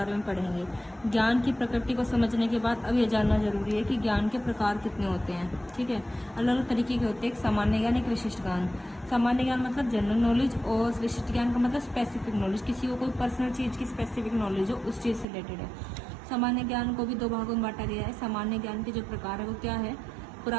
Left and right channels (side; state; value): left; drops out; at 15.2 s